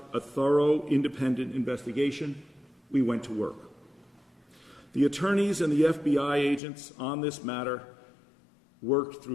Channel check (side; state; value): right; drops out; at 6.6 s